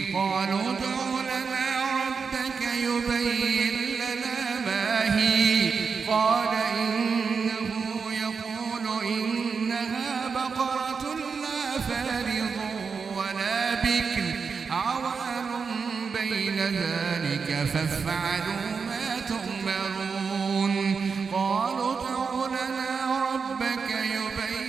قالوا ادع لنا ربك يبين لنا ما هي قال إنه يقول إنها بقرة لا فارض ولا بكر عوان بين ذلك فافعلوا ما تؤمرون قالوا ادع لنا ربك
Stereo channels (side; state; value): left; quieter; 5.4 dB